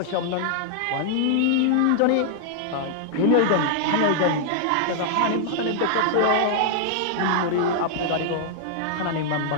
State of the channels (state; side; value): different; both; correlation 0.00